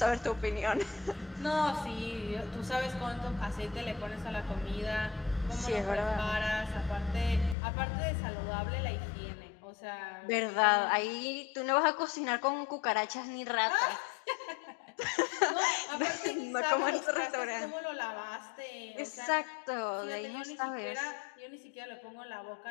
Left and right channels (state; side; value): drops out; right; at 7.6 s